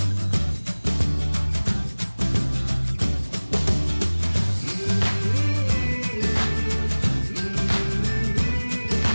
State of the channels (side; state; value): both; inverted; correlation -1.00